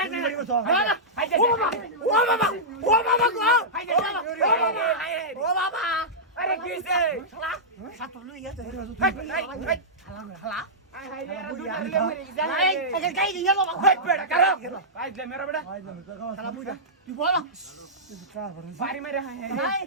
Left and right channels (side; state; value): both; normal; correlation -0.13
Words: তিন বাড়ি বসু না না হাইতে ও বাবা গো হাইতে ও বাবা আরে কিছে শালা সাত লই গেছে হালা হাই রে দুটা রে মরে এই যায় এই গাই দিয়ে যাবো হাই বেটা কারো পাইলে মেরা বেটা ভাই জানো জাগাস শালা বুইরা তুই বল বাড়ি মেরে হাই ভাই